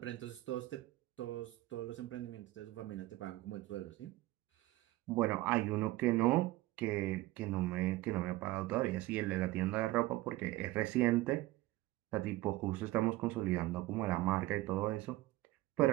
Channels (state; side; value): quieter; left; 18.2 dB